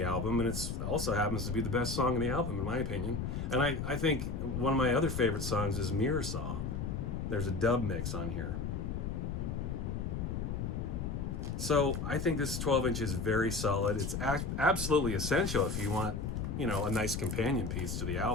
album, and it also happens to be the best song on the album, in my opinion. And I think one of my other favorite songs is Mirror Saw. There's a dub mix on here. So I think this 12-inch is very solid. It's absolutely essential if you want, a nice companion piece to the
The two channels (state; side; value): noise; left; rumble, 3 dB below the sound